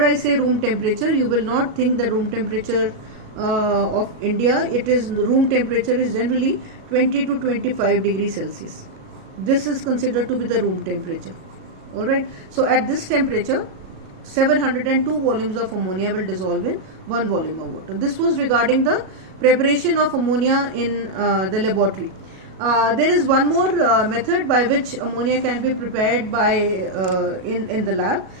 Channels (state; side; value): late; left; 37 ms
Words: I say room temperature, you will not think the room temperature of India. It is, the room temperature is generally 20 to 25 degrees Celsius. This is considered to be the room temperature. Alright. So at this temperature, 702 volumes of ammonia will dissolve in 1 volume of water. This was regarding the preparation of ammonia in the laboratory. There is one more method by which ammonia can be prepared by in the lab.